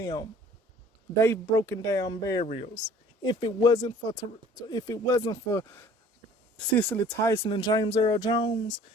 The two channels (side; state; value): both; normal; correlation 0.51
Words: them. They've broken down barriers. If it wasn't for Cicely Tyson and James Earl Jones,